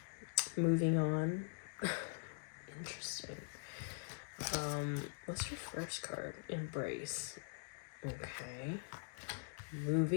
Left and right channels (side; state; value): right; silent; digital silence